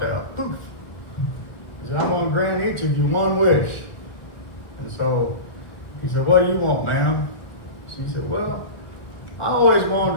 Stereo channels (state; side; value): late; right; 1.6 ms